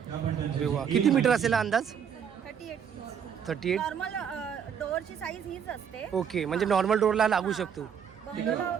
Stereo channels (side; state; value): left; quieter; 7.8 dB